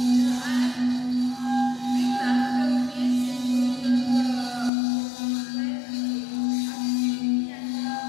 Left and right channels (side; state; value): right; drops out; at 4.7 s